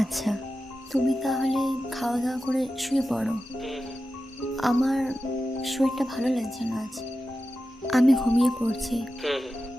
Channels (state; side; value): normal; both; correlation 0.92